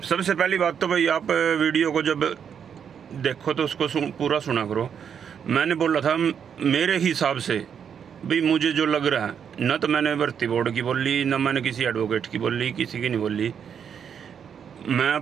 सबसे पहली बात तो भाई आप वीडियो को जब देखो तो उसको पूरा सुना करो। मैंने बोला था मेरे हिसाब से भाई मुझे जो लग रहा है, न तो मैंने भर्ती बोर्ड की बोली, न मैंने किसी एडवोकेट की बोली, किसी की नहीं बोली, मैं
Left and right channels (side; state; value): left; quieter; 7.7 dB